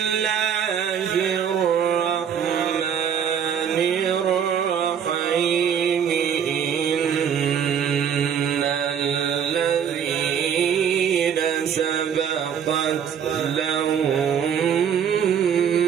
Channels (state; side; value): quieter; left; 8.1 dB